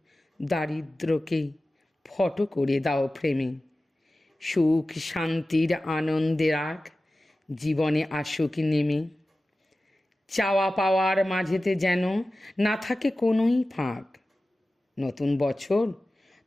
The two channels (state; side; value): normal; both; correlation 0.95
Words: দারিদ্র্যকে ফটো করে দাও ফ্রেমে, সুখ শান্তির আনন্দের রাগ জীবনে আসুক নেমে। চাওয়া পাওয়ার মাঝেতে যেন না থাকে কোনোই ফাঁক। নতুন বছর